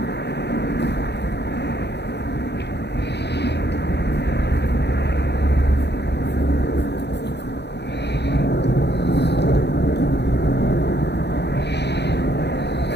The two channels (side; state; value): right; late; 0.50 ms